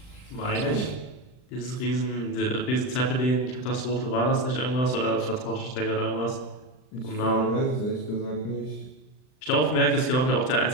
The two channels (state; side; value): late; right; 39 ms